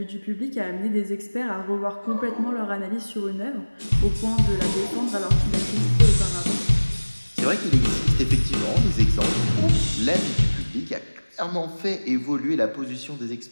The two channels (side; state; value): both; inverted; correlation -1.00